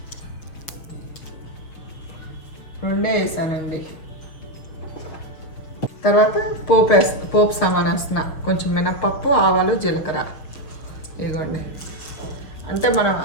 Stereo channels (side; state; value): right; late; 6.7 ms